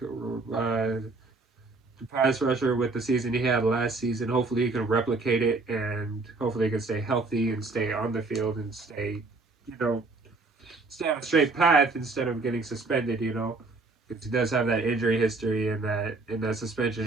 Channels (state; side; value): quieter; left; 3.6 dB